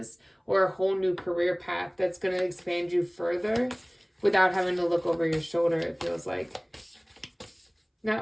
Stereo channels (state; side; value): identical; both; correlation 1.00